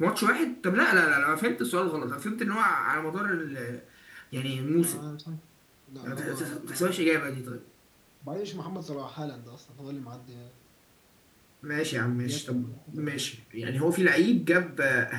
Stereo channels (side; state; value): both; identical; correlation 1.00